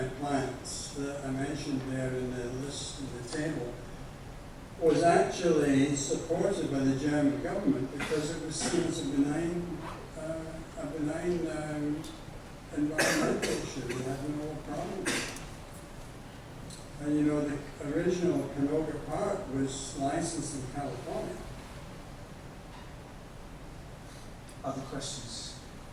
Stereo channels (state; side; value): identical; both; correlation 1.00